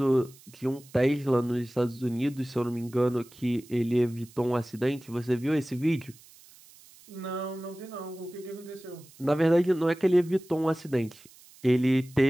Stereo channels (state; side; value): noise; right; hiss, 24 dB below the sound